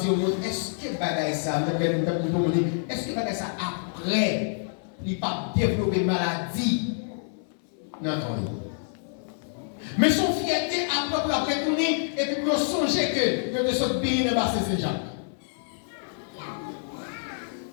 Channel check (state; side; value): silent; right; 60 dB below the other